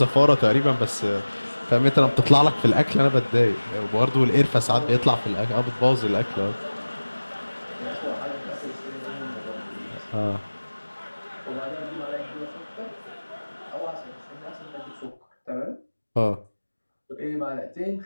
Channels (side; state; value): both; inverted; correlation -1.00